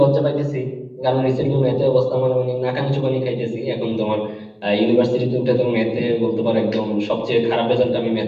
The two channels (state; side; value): identical; both; correlation 1.00